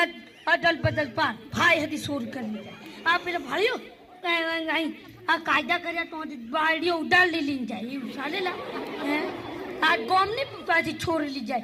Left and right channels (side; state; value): both; identical; correlation 1.00